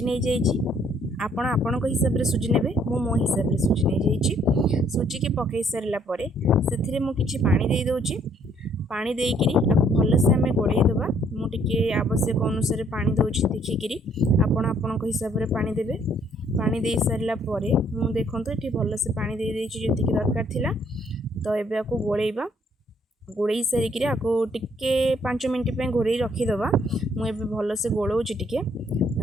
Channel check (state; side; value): normal; both; correlation 0.65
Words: नहीं जाइए, आपण हिसाब से सुजी ने, मो हिसाब से सुजी नहीं जाइए। सुजी के पकई सारापर से मुझे पानी दे दूची। पानी देकरी भल से आम गोड़े दबा। मुझे आवश्यक अनुसार पानी दूसरी देखिकी आपण हिसाब से पानी देवे। पानी दे सारापर मुझे देखूँ ये भल से पानी दे जी दरकार थिला। तो ये आपको गोलेबा, गोड़े सारिकी आपको टिके 5 मिनट घोड़े रखीदबा। मुझे भल से गोलाऊँच टिके